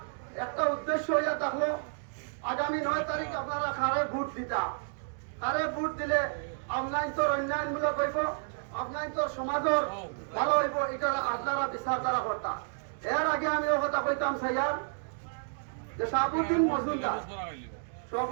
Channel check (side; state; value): left; silent; digital silence